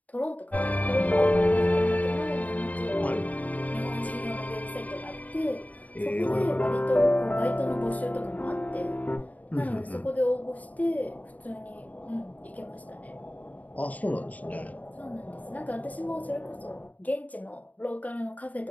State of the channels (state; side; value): late; right; 0.074 ms